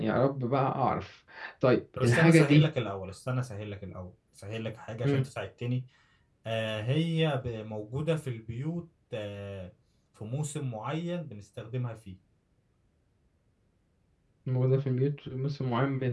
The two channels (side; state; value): both; identical; correlation 1.00